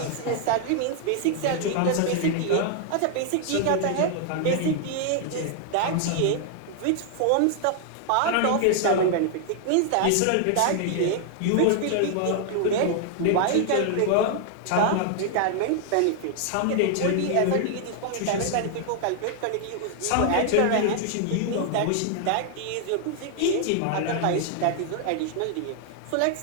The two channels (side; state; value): both; different; correlation 0.00